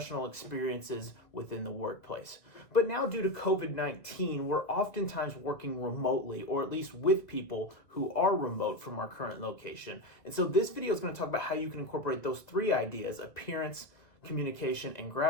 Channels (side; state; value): right; late; 1.9 ms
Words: experiences within the workplace. But now, due to COVID-19, we're oftentimes working remotely, or at least with people who are remote from our current location. And so this video is going to talk about how you can incorporate those three ideas, appearance, communication, and